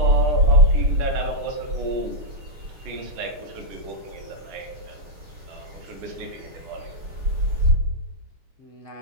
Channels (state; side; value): late; left; 6.7 ms